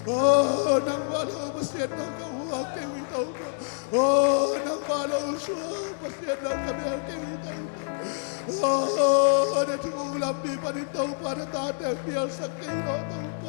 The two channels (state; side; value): silent; right; digital silence